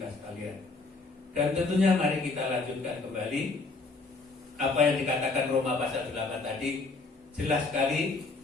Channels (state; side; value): quieter; right; 3.8 dB